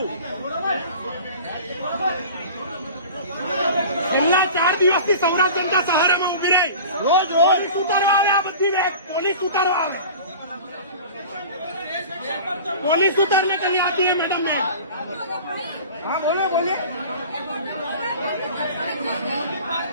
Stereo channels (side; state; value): both; inverted; correlation -0.39